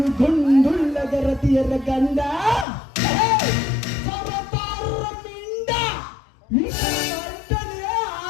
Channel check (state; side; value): drops out; right; at 2.7 s